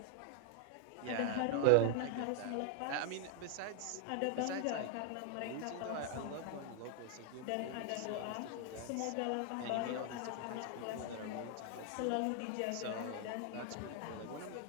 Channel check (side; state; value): both; different; correlation 0.00